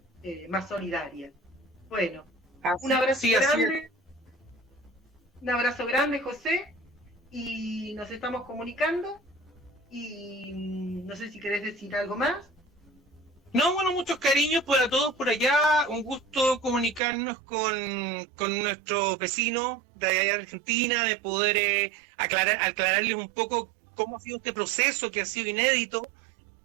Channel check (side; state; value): left; drops out; at 17.0 s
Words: más solidaria. Bueno, un abrazo grande. Un abrazo grande, José, y nos estamos comunicando. Y no sé si querés decir algo más. No, bueno, muchos cariños para todos por allá. Un gusto comunicarnos con nuestros vecinos de allá de Argentina, de poder aclararles un poco cómo ha sido este proceso que ha sido inédito